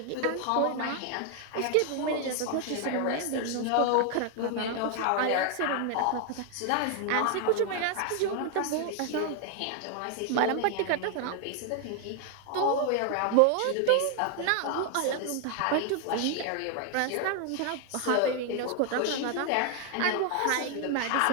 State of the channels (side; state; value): both; different; correlation 0.00